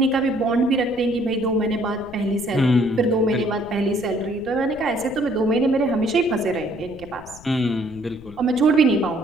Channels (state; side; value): noise; left; rumble, 20 dB below the sound